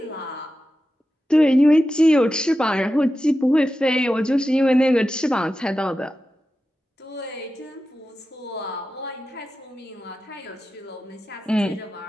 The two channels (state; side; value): normal; both; correlation 0.92